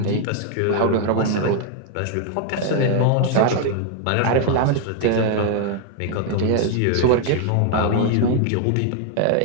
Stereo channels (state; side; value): different; both; correlation 0.00